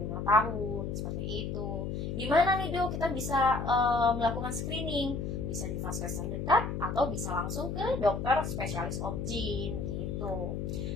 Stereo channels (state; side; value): noise; left; hum, 3 dB below the sound